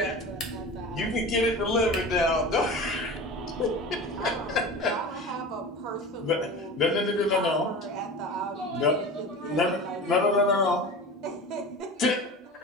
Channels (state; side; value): normal; both; correlation 0.33